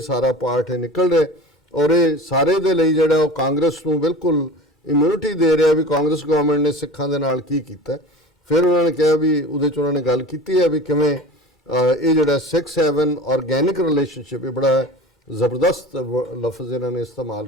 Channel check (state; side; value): normal; both; correlation 0.36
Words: ਸਾਰਾ ਪਾਰਟ ਨਿਕਲ ਰਿਹਾ। ਔਰ ਇਹ ਸਾਰੇ ਦੇ ਲਈ ਜਿਹੜਾ ਉਹ ਕਾਂਗਰਸ ਨੂੰ ਬਿਲਕੁਲ ਇਮਿਊਨਿਟੀ ਦੇ ਰਿਹਾ ਵੀ ਕਾਂਗਰਸ ਗਵਰਨਮੈਂਟ ਨੇ ਸਿੱਖਾਂ ਦੇ ਨਾਲ ਕੀ ਕੀਤਾ। ਫਿਰ ਉਹਨਾਂ ਨੇ ਕਿਹਾ ਵੀ ਉਹਦੇ 'ਚ ਉਹਨਾਂ ਨੇ ਗੱਲ ਕੀਤੀ ਹੈ ਵੀ ਕਿਵੇਂ ਇਹ ਜਿਹੜਾ 6-7 ਆਰਗੈਨਿਕ ਰਿਲੇਸ਼ਨਸ਼ਿਪ, ਇਹ ਬੜਾ ਜ਼ਬਰਦਸਤ ਲਫ਼ਜ਼ ਇਹਨਾਂ ਨੇ ਇਸਤੇਮਾਲ